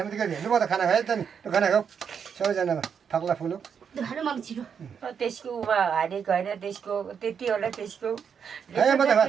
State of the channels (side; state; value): left; quieter; 7.1 dB